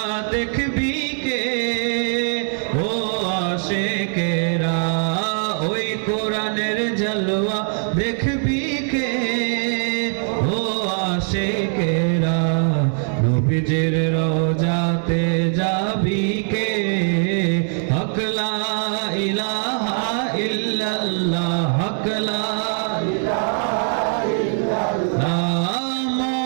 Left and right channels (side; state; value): left; silent; 58 dB below the other